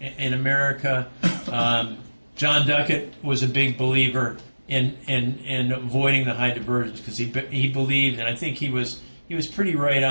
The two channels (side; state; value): both; inverted; correlation -1.00